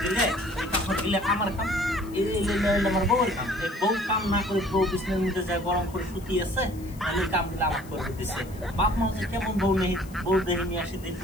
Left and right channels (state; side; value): noise; left; hiss, 22 dB below the sound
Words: দিলে আমার কাম আমার বউয়ের কাম এই বউ কাম না করে বউ বিছানার মধ্যে যায় গরম করে শুতি আছে তাহলে কাম দিলে আমার করে দিতেছে বাপ মা যে কেমন বউ নেই বউ দেখে নিয়ে আসি দিল